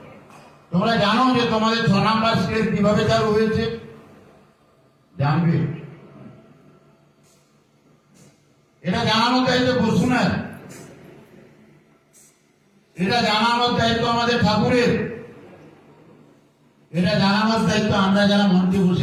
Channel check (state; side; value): identical; both; correlation 1.00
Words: তোমরা জানো যে তোমাদের 6 নম্বর স্কেল কিভাবে চালু হয়েছে? জানবে? এটা জানানোর দায়িত্ব বসুনের, এটা জানানোর দায়িত্ব আমাদের ঠাকুরের, এটা জানানোর দায়িত্ব আমরা যারা মঞ্চে